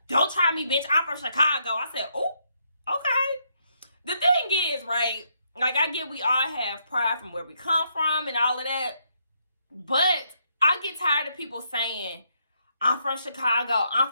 Don't try me, bitch. I'm from Chicago. I said, oh, okay. The thing is, right, like I get we all have pride from where we come from and all of that. But I get tired of people saying, I'm from Chicago, I'm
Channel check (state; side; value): inverted; both; correlation -0.75